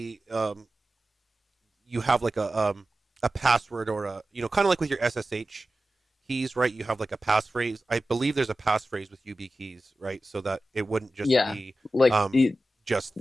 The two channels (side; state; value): both; normal; correlation 0.94